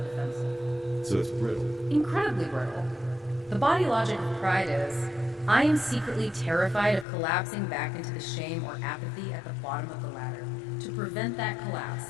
defensive. So it's brittle. Incredibly brittle. The body logic of pride is, I am secretly terrified of collapsing back into the shame or apathy at the bottom of the ladder. To prevent that collapse,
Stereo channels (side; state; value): right; drops out; at 7.1 s